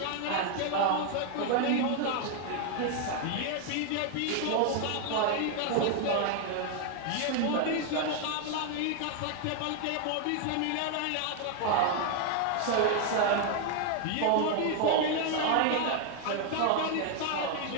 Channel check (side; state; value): both; different; correlation 0.00